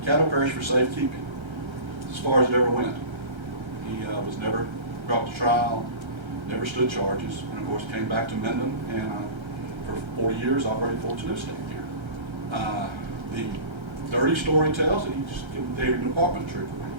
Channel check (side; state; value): left; late; 1.3 ms